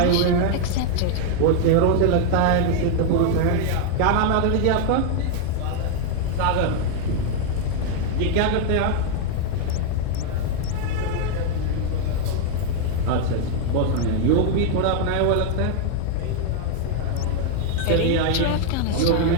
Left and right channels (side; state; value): both; different; correlation 0.00